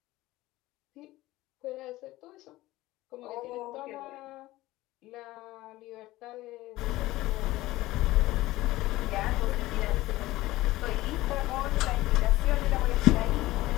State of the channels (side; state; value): right; quieter; 17.6 dB